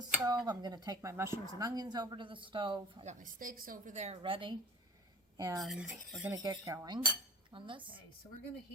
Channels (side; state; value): both; normal; correlation 0.37